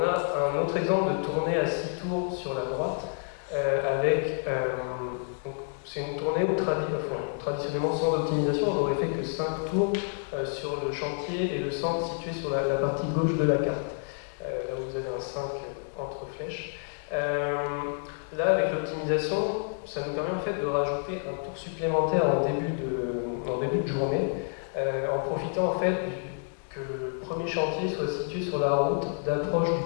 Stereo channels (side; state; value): right; silent; 59 dB below the other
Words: a un autre exemple de tournée à 6 tours sur la droite avec c'est une tournée où traditionnellement sans optimisation, on n'aurait fait que 5 tours sur le chantier et le centre situé sur la partie gauche de la carte. Là où vous avez un 5 entre flèches. Là, avec l'optimisation, ça nous permet en fait de rajouter un tour supplémentaire en début de journée, en profitant en fait que le premier chantier soit situé sur la route d'approche